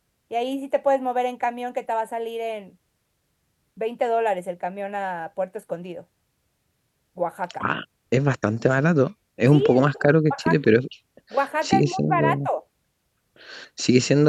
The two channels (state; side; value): identical; both; correlation 1.00